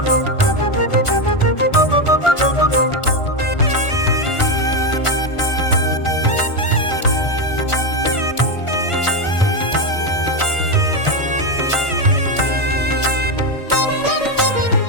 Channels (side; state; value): right; late; 1.4 ms